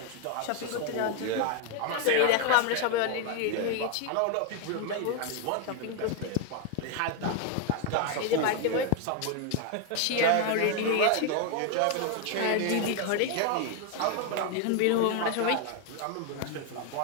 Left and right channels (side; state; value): both; different; correlation 0.01